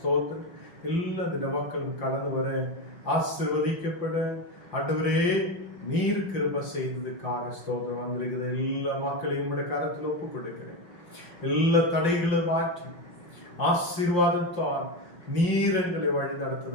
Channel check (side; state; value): right; late; 5.8 ms